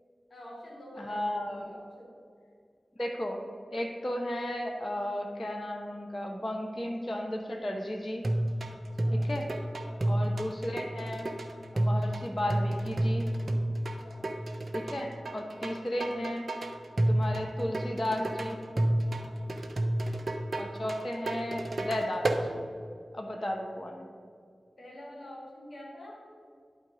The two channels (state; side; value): normal; both; correlation 0.97